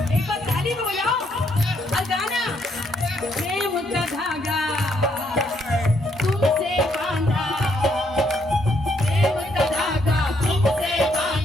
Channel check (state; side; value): normal; both; correlation 0.73